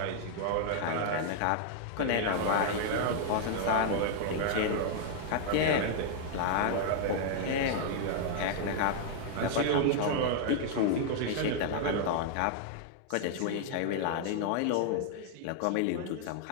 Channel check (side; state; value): both; different; correlation 0.00